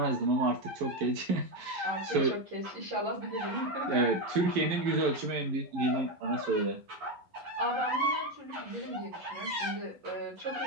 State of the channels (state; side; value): late; left; 11 ms